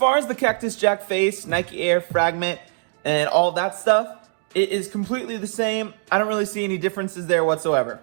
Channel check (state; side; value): silent; left; digital silence